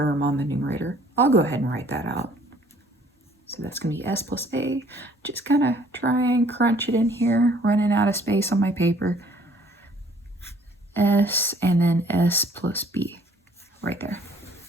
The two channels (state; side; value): normal; both; correlation 0.58